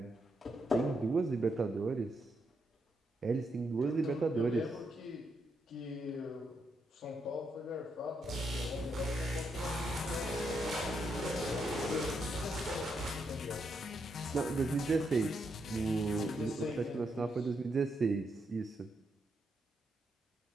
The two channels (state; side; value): normal; both; correlation 0.80